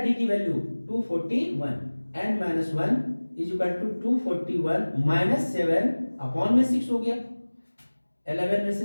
d की वैल्यू 241, n - 1 = 241 - 7 अपॉन में 6 हो गया। 11 में से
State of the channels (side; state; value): both; inverted; correlation -1.00